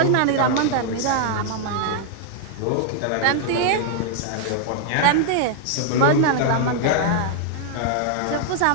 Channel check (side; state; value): both; different; correlation -0.01